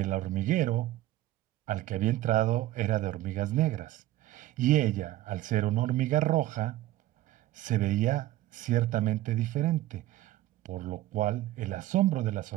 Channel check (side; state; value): left; quieter; 15.4 dB